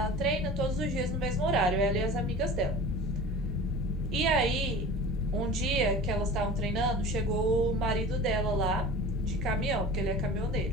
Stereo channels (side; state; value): both; normal; correlation 0.38